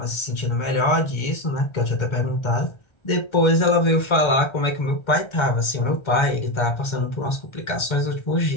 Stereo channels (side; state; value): right; late; 2.1 ms